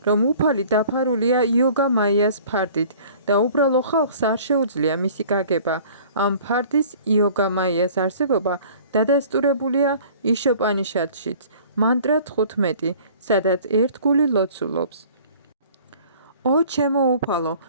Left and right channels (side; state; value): both; inverted; correlation -0.49